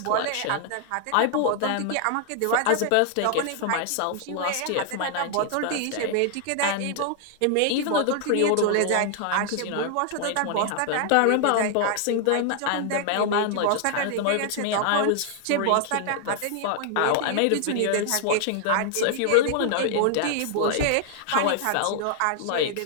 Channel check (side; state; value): both; different; correlation 0.00